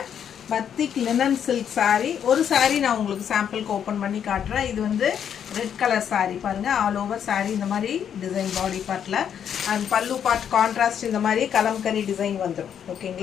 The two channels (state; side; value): quieter; right; 8.6 dB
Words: பத்திக் linen silk saree. ஒரு saree நான் உங்களுக்கு சாம்பிளுக்கு ஓபன் பண்ணி காட்டுறேன். இது வந்து ரெட் கலர் saree பாருங்க. ஆல் ஓவர் saree இந்த மாதிரி டிசைன் பாடி பார்ட்ல and பல்லு பார்ட் கான்ட்ராஸ்ட் இந்த மாதிரி கலம்கரி டிசைன் வந்துரும்.